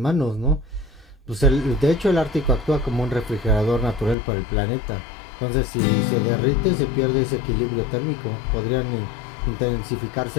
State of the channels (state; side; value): drops out; right; at 4.2 s